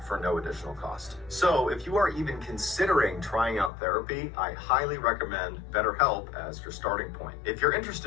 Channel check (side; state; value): right; drops out; at 3.7 s